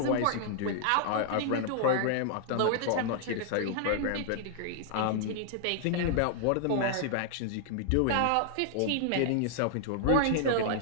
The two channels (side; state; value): both; different; correlation 0.00